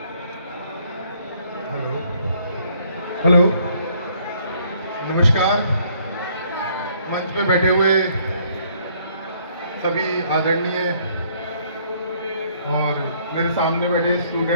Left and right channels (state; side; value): inverted; both; correlation -0.65